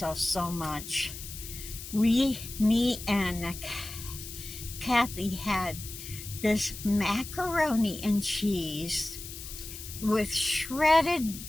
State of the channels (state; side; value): noise; left; hiss, 11 dB below the sound